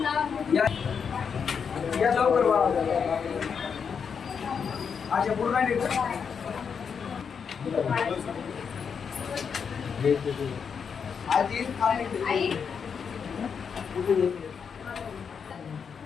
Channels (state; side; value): quieter; right; 6.5 dB